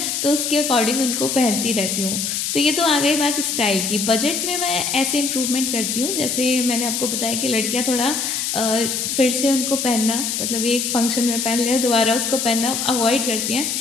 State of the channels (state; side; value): noise; left; hiss, 1 dB below the sound